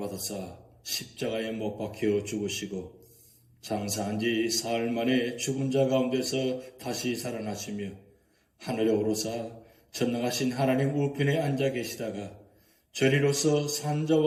십자가에 못 박혀 죽으시고 장사한 지 사흘 만에 죽은 자 가운데서 다시 살아나시며 하늘에 오르사 전능하신 하나님 우편에 앉아 계시다가 저리로서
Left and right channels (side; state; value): both; identical; correlation 1.00